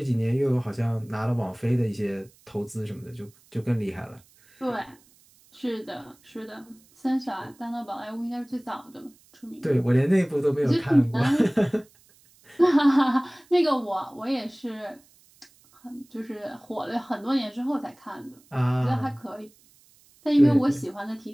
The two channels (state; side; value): noise; right; hiss, 30 dB below the sound